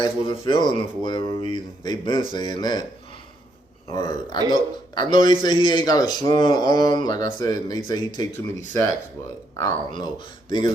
wasn't feeling him for whatever reason. They been saying that. Or I know they say he ain't got a strong arm. Like I said, and they say he take too many sacks, but I don't know.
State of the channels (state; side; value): normal; both; correlation 0.75